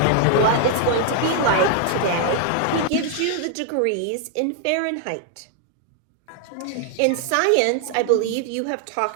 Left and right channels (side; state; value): both; different; correlation 0.00